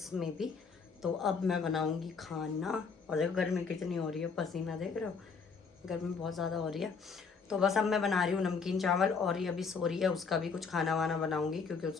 में भी। तो अब मैं बनाऊंगी खाना, और देखो गर्मी कितनी हो रही है, पसीना देख रहे हो, गर्मी बहुत ज़्यादा हो रही है। तो बस अब मैं बना रही हूँ नमकीन चावल, और ये अभी सो रही है, उसका भी कुछ खाना वाना बनाऊंगी क्योंकि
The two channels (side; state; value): right; quieter; 5.3 dB